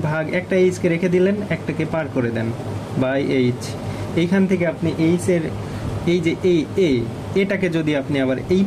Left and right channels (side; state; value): both; identical; correlation 1.00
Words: ভাগ, একটা এইচকে রেখে দিলেন, একটাকে পার করে দেন বাই এইচ, এইখান থেকে আপনি এইচ এর এই যে এটাকে যদি আপনি আবার এই